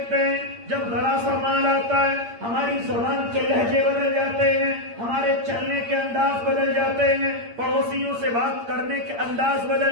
ہیں جب ذرا سا مال آتا ہے ہماری زبان کے لہجے بدل جاتے ہیں، ہمارے چلنے کے انداز بدل جاتے ہیں، پڑوسیوں سے بات کرنے کے انداز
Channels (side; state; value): left; late; 8.7 ms